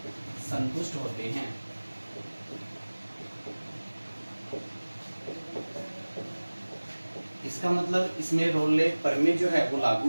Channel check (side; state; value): both; inverted; correlation -1.00